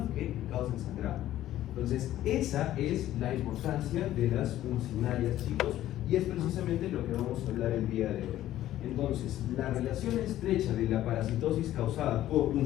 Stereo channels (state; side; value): quieter; right; 13.4 dB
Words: que causan sangrado. Entonces, esa es la importancia de las uncinarias, chicos, y es precisamente lo que vamos a hablar el día de hoy. Entonces, la relación estrecha de la parasitosis causada por